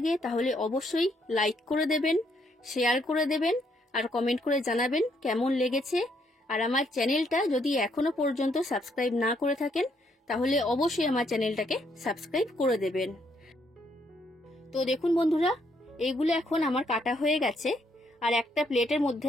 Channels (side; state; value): both; normal; correlation 0.72